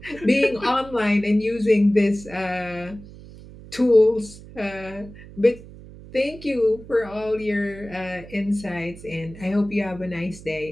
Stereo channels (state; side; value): noise; right; hum, 17 dB below the sound